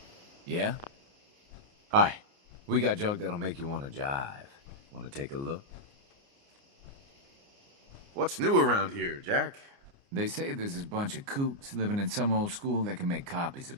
Yeah? Hi. We got junk that'll make you want to jive. Want to take a look? What's new around here, Jack? They say there's this bunch of kooks living in some old school that can make copies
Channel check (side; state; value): left; late; 29 ms